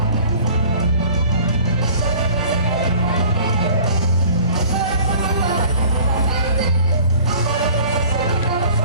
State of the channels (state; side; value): inverted; both; correlation -0.48